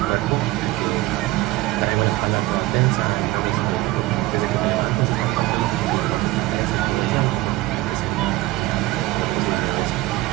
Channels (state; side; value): quieter; left; 18.4 dB